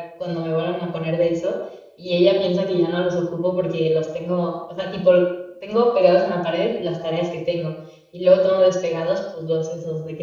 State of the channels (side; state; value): both; identical; correlation 1.00